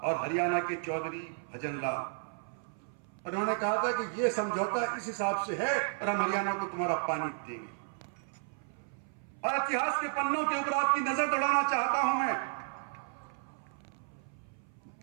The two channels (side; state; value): left; silent; 56 dB below the other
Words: और हरियाणा के चौधरी भजन लाल। उन्होंने कहा था कि यह समझौता इस हिसाब से है और हम हरियाणा को तुम्हारा पानी देंगे। और इतिहास के पन्नों के ऊपर आपकी नजर दौड़ाना चाहता हूं मैं,